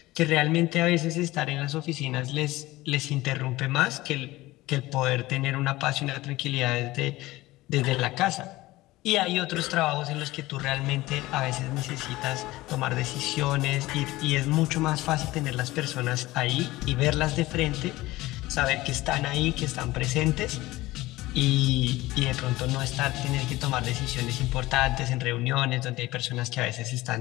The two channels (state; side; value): quieter; right; 18.6 dB